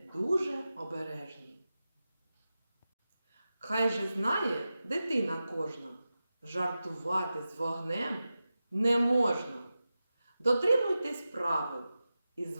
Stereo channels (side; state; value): both; inverted; correlation -0.93